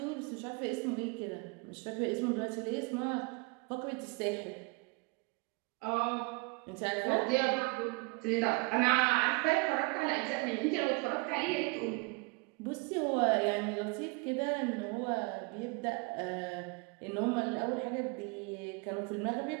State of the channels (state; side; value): quieter; left; 28.9 dB